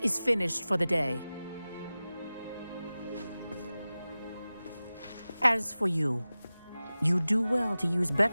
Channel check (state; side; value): inverted; both; correlation -0.96